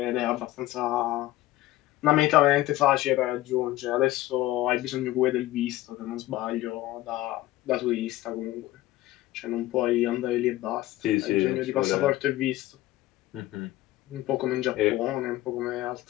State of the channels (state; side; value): quieter; right; 16.3 dB